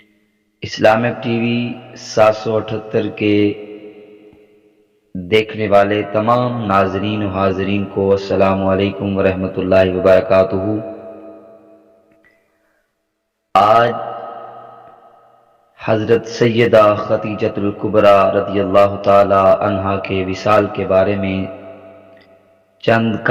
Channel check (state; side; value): identical; both; correlation 1.00